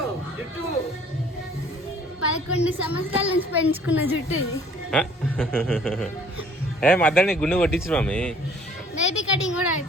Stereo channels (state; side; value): normal; both; correlation 0.55